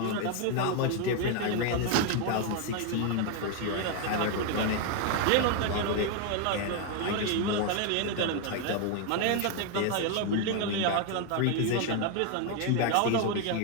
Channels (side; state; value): both; different; correlation 0.01